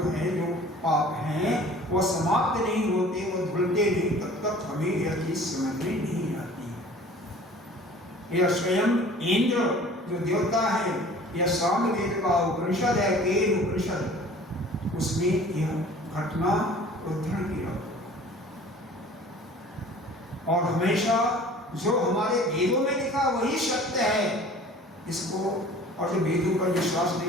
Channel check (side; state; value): both; normal; correlation 0.47